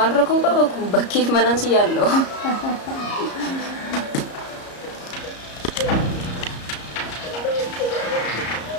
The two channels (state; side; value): late; right; 34 ms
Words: rakkoo qaba kun bakkeef manaan si yaalloo.